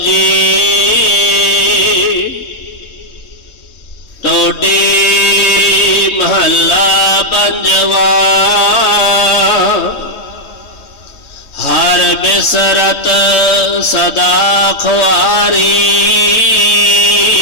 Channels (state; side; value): late; right; 3.2 ms